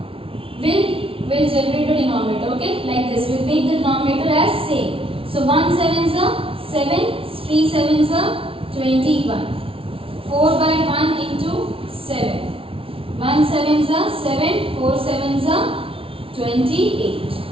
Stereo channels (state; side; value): late; left; 0.26 ms